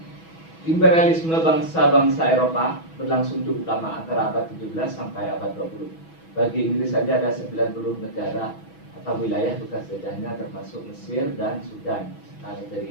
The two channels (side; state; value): right; late; 6.1 ms